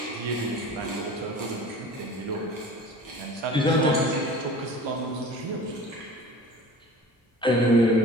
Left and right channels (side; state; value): both; normal; correlation 0.41